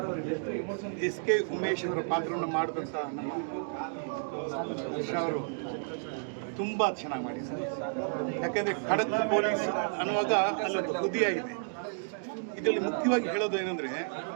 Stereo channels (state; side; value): silent; left; digital silence